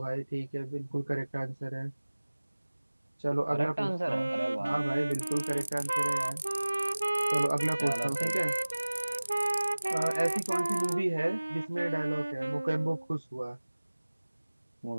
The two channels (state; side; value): inverted; both; correlation -1.00